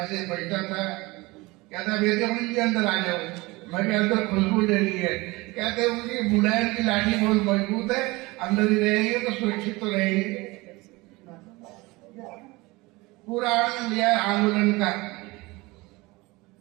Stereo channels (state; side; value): quieter; left; 22.6 dB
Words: बैठा था। कहता वेदमणि जी अंदर आ जाओ। मैं अंदर खुशबू ले ली है। कहते उनकी मुलायम की लाठी बहुत मजबूत है, अंदर ही रहेंगे तो सुरक्षित तो रहेंगे। पूरा आनंद लिया आंदोलन का।